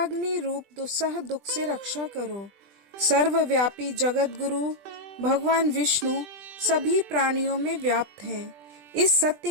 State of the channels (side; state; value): left; late; 20 ms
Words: रूप दुस्सह दुख से रक्षा करो। सर्वव्यापी जगत गुरु भगवान विष्णु सभी प्राणियों में व्याप्त हैं। इस सत्य